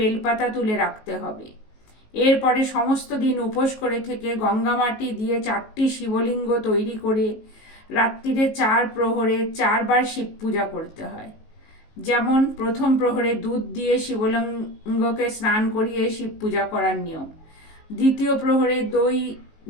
তুলে রাখতে হবে। এরপরে সমস্ত দিন উপোস করে থেকে গঙ্গামাটি দিয়ে 4টি শিবলিঙ্গ তৈরি করে রাত্রিরে 4 প্রহরে 4 বার শিব পূজা করতে হয়। যেমন প্রথম প্রহরে দুধ দিয়ে শিবলিঙ্গকে স্নান করিয়ে শিব পূজা করার নিয়ম। দ্বিতীয় প্রহরে দই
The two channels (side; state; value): right; late; 19 ms